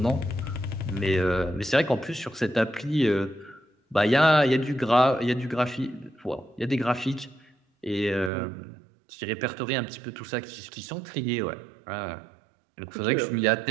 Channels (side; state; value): left; drops out; at 8.3 s